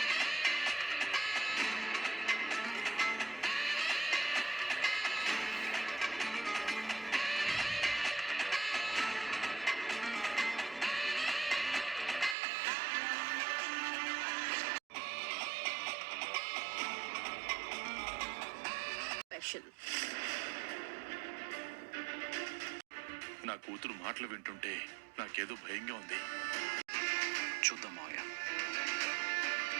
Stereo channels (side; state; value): left; drops out; at 12.4 s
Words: నా కూతురు మాటలు వింటుంటే నాకేదో భయంగా ఉంది. చూద్దాం మావయ్య.